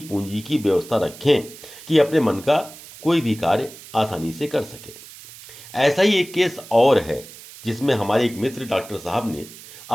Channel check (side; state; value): right; noise; hiss, 17 dB below the sound